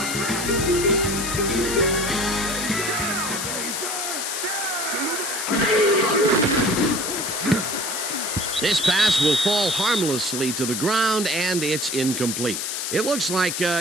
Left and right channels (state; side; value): noise; left; hiss, 3 dB below the sound